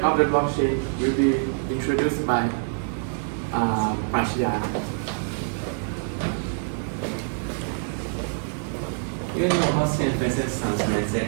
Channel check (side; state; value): left; silent; digital silence